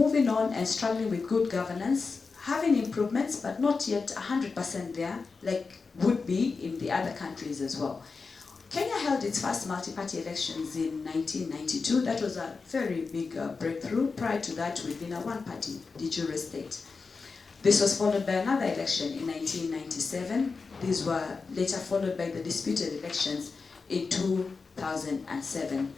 on and struggling with good governance, having improvements, but not yet 100% there, like would be in the other countries as well. Kenya held its first multi-party elections in 1992. That was a very big breakthrough. Prior to that, we'd been a one-party de jure state. This was followed by another election in 1997. These were later followed by the disputed elections in 2007.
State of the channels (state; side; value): quieter; right; 4.5 dB